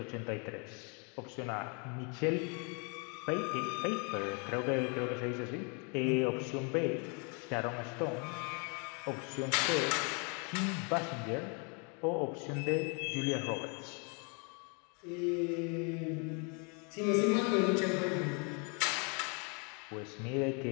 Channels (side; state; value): right; quieter; 35.3 dB